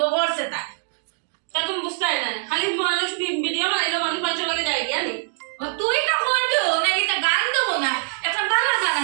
করছে তাই তা তুমি বুঝতাই না খালি মানুষ ভিডিও বানাইলো মানুষ পাঁচশো লাগে যাই গিয়া নি তুই না করবো নাকি তা গান দেবো না একটা বাংলা গান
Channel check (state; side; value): silent; left; digital silence